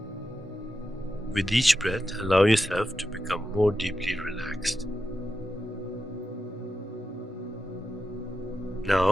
With each breath, allow yourself to become more deeply relaxed.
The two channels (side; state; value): both; normal; correlation 0.89